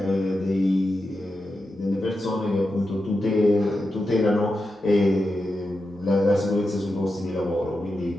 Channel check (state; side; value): normal; both; correlation 0.89